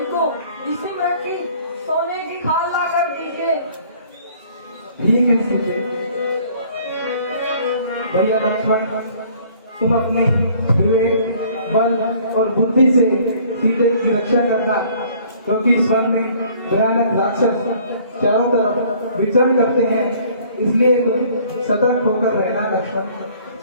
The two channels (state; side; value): inverted; both; correlation -0.56